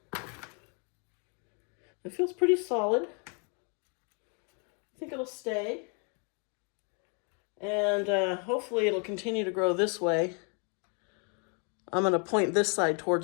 It feels pretty solid. I think it'll stay, and hopefully it'll continue to grow this way. I'm going to point this side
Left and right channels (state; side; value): quieter; right; 37.8 dB